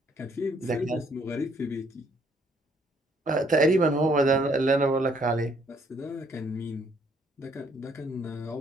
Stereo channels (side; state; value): both; normal; correlation 0.67